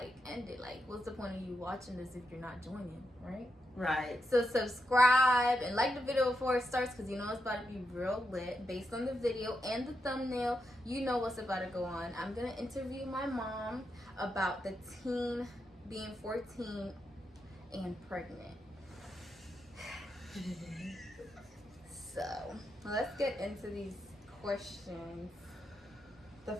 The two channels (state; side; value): normal; both; correlation 0.84